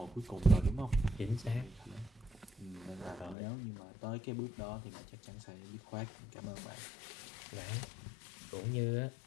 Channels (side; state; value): right; drops out; at 3.4 s